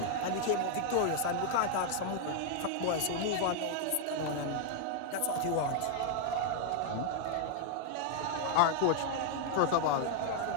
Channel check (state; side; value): different; both; correlation 0.00